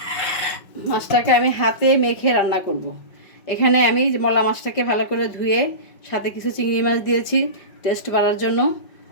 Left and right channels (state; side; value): late; right; 5.3 ms